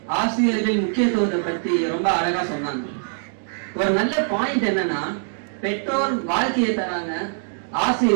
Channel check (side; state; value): left; silent; digital silence